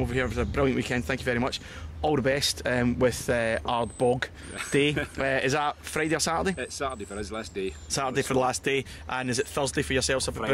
over here. It was a brilliant weekend, thank you very much. All the best with Ardbeg Day. Is that Friday or Saturday? It's Saturday for his last day. Saturday for the last day. And is it Thursday for yourselves?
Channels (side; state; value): both; identical; correlation 1.00